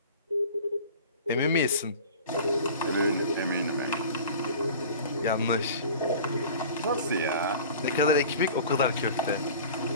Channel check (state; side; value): inverted; both; correlation -0.41